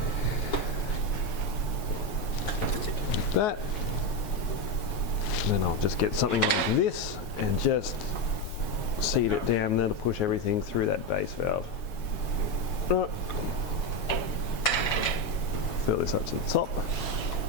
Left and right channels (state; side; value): late; right; 7.3 ms